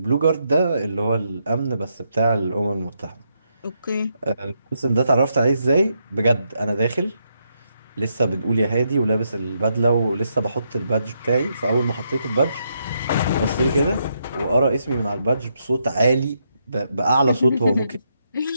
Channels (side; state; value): both; inverted; correlation -0.79